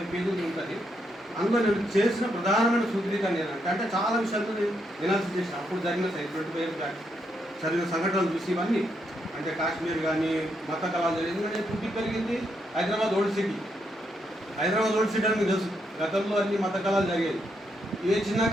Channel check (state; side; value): normal; both; correlation 0.79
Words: పేజీలు ఉంటుంది. అందులో నేను చేసిన ప్రధానమైన సూత్రీకరణ ఏంటంటే అంటే చాలా విషయాలు నేను ఎనాలిసిస్ చేసిన అప్పుడు జరిగిన 25 ఇయర్స్ బ్యాక్ జరిగిన సంఘటనలు చూసి ఇవన్నీ. అంటే కాశ్మీర్ కానీ మత కళాలు జరిగింది. ఎందుకంటే పుట్టి పెరిగింది Hyderabad old city. Hyderabad old city అని మీకు తెలుసు, గతంలో అన్ని మత కళాలు జరిగేది. ఏ చిన్న